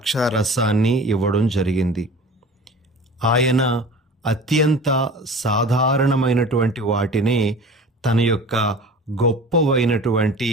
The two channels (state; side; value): normal; both; correlation 0.39